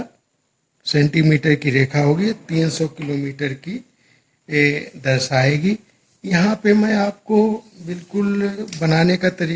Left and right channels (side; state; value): both; identical; correlation 1.00